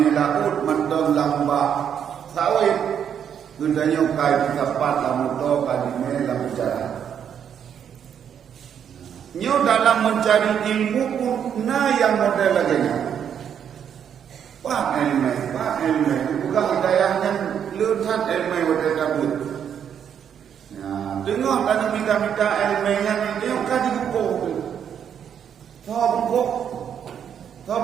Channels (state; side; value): quieter; left; 8.5 dB